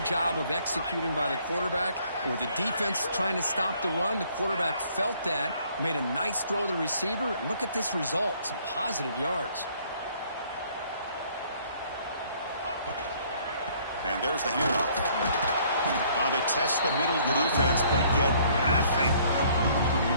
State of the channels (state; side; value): inverted; both; correlation -0.61